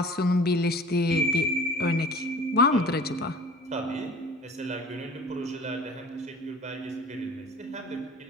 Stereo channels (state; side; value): normal; both; correlation 0.44